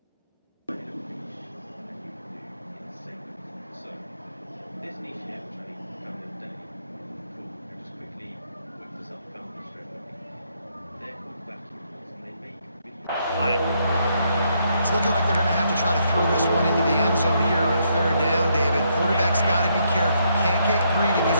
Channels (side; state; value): both; inverted; correlation -0.75